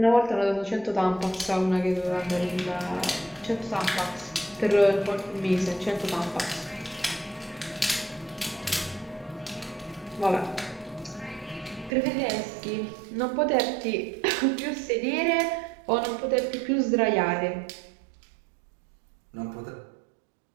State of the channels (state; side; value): drops out; left; at 11.9 s